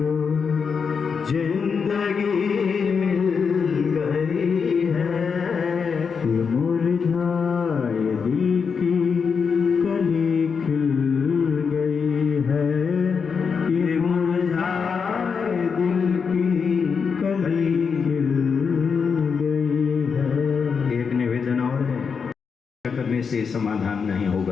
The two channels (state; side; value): quieter; right; 5.9 dB